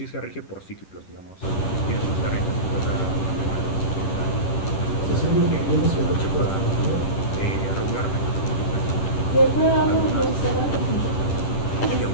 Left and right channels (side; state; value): right; late; 10 ms